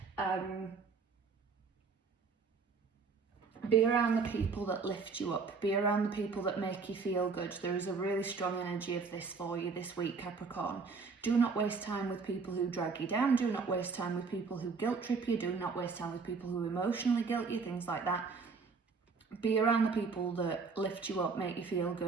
Be around the people that lift you up. Be around the people that make you feel good. There is a really strong energy of this for you this week, Capricorn. Do not waste time with people who drag you down. Do not waste time with people who guilt trip you. Do not waste time with people who emotionally guilt you, things like that. Be around the people that lift you up, make you feel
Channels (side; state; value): left; quieter; 4.8 dB